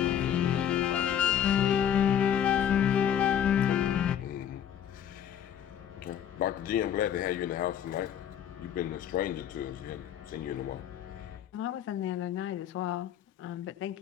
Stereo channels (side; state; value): right; quieter; 9.6 dB